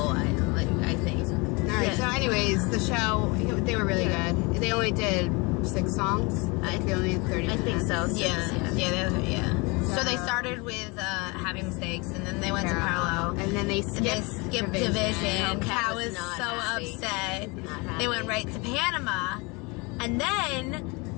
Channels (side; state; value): right; quieter; 27.6 dB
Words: I think. Alright, Yeah. so anyways, the show, they were really Yeah. good. They only did 6 songs. They only had 30 I think minutes. so. Yeah. So they started with Happy Mistakes, and then they went to Parallel. And then they And they skipped skipped Oh, Division. Kat Kat was was not so happy. upset. Not They went happy. right to Panama, and